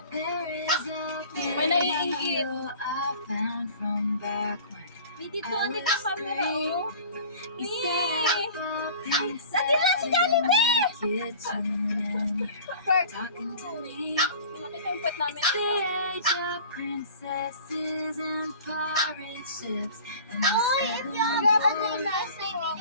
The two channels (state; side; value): inverted; both; correlation -0.44